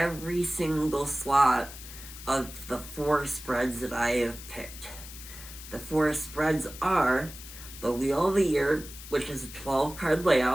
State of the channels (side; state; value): left; noise; hiss, 14 dB below the sound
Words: single slot of the 4 spreads that I have picked. The 4 spreads are the Wheel of the Year, which is a 12 card